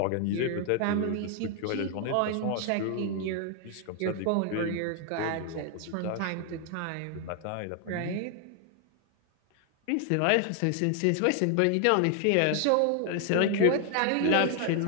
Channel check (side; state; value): both; different; correlation 0.00